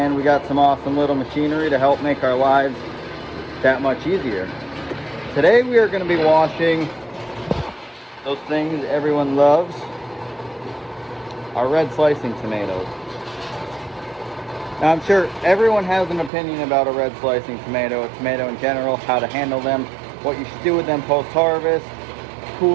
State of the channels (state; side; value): drops out; left; at 16.3 s